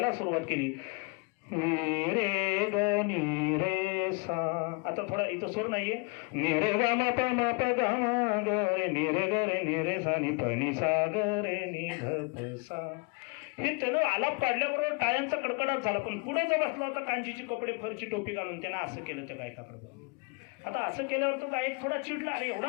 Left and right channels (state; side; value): quieter; right; 30.9 dB